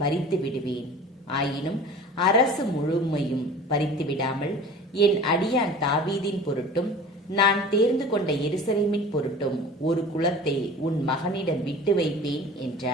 பறித்து விடுவேன். ஆயினும் அரசு முழுமையும் பறித்து விடாமல் என் அடியான் தாவீதின் பொருட்டும் நான் தேர்ந்து கொண்ட எருசலேமின் பொருட்டும் ஒரு குலத்தை உன் மகனிடம் விட்டு வைப்பேன்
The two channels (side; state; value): both; normal; correlation 0.40